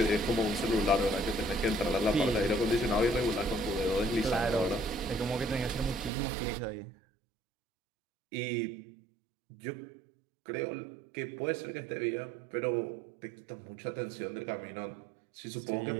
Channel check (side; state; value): left; drops out; at 6.1 s